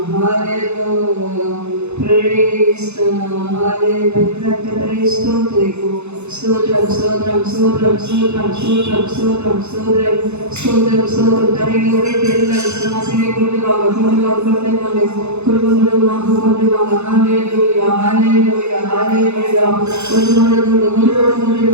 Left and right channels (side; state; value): left; late; 0.81 ms